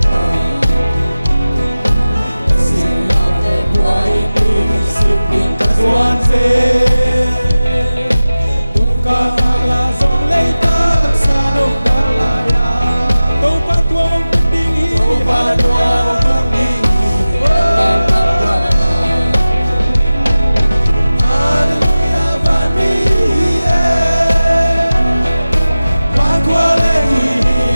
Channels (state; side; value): inverted; both; correlation -0.97